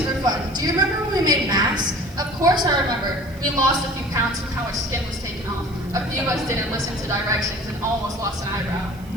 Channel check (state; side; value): noise; right; hiss, 25 dB below the sound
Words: fun. Do you remember when we made masks? Of course I remember. We lost a few pounds from how much skin was taken off. A few of us didn't listen to directions and almost lost an eyebrow.